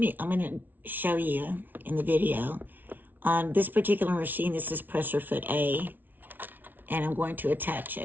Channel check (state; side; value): late; left; 0.088 ms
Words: going to show you in the video on this particular machine. This is presser foot A, and I'm going to attach